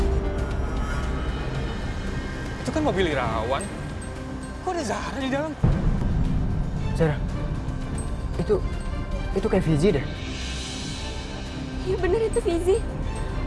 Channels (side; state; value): both; identical; correlation 1.00